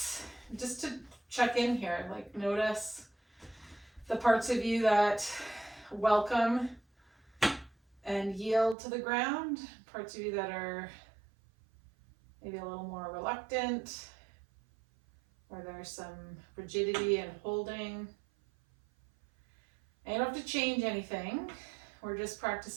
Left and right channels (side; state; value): left; drops out; at 8.8 s